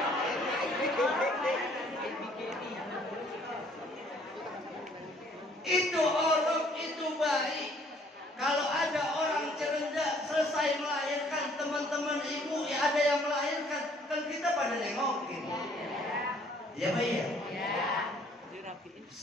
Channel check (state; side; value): normal; both; correlation 0.60